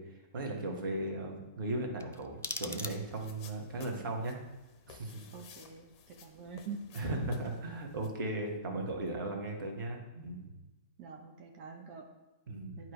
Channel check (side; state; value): both; inverted; correlation -0.42